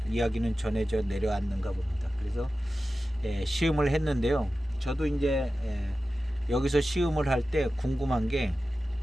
이야기는 전해져 내려왔는가 봅니다. 그래서 시음을 했는데요. 저도 이제 여기서 시음을 할 때 궁금한 게,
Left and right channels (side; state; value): both; normal; correlation 0.94